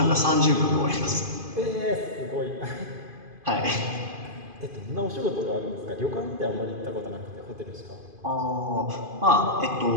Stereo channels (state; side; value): late; left; 2.5 ms